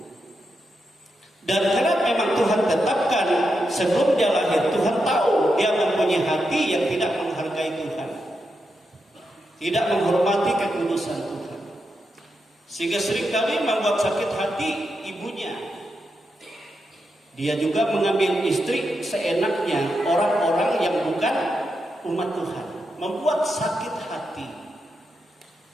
Dan karena memang Tuhan tetapkan sebelum dia lahir, Tuhan tahu dia mempunyai hati yang tidak menghargai Tuhan, tidak menghormati kekudusan Tuhan, sehingga seringkali membuat sakit hati ibunya. Dia juga mengambil istri seenaknya, orang-orang yang bukan umat Tuhan, membuat sakit hati.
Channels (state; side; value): normal; both; correlation 0.85